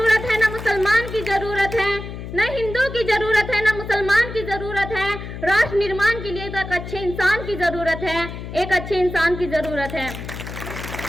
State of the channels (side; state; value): left; noise; hum, 9 dB below the sound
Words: है, न मुसलमान की जरूरत है, न हिंदू की जरूरत है, ना मुसलमान की जरूरत है। राष्ट्र निर्माण के लिए तो एक अच्छे इंसान की जरूरत है, एक अच्छे इंसान की जरूरत है।